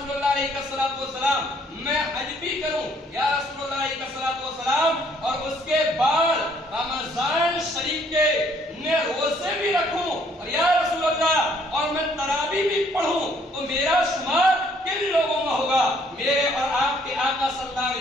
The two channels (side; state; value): both; normal; correlation 0.64